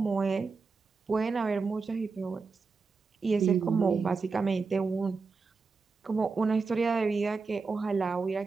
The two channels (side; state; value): left; quieter; 4.5 dB